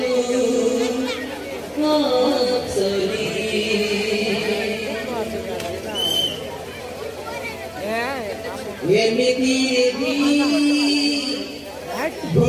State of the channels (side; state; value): both; identical; correlation 1.00